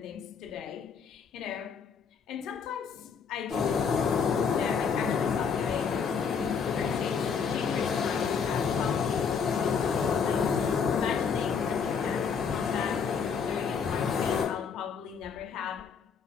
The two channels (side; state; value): right; quieter; 6.3 dB